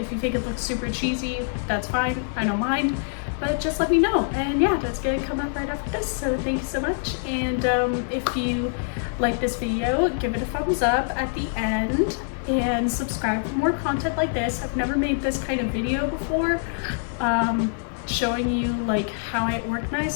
you think it looks super cheesy, that's fine. I don't mind. But just let me know. And yeah, that's gonna come up right after this. So thank you so much. And if you like this video, give it a thumbs up at the end and subscribe for more content like this. I've never made this kind of video before, showing you like how I organize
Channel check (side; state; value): right; silent; 55 dB below the other